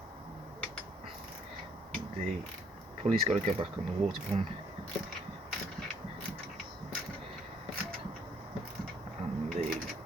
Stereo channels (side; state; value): both; normal; correlation 0.65